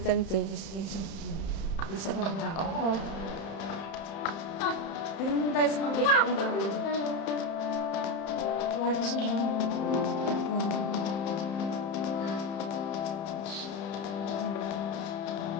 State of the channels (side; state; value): right; late; 31 ms